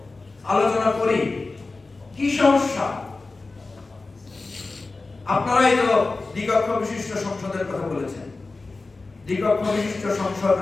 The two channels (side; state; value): right; quieter; 3.6 dB